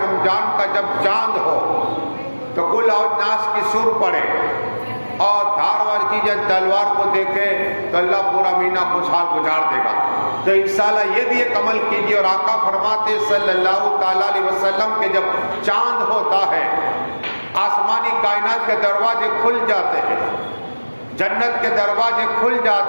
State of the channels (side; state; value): both; inverted; correlation -1.00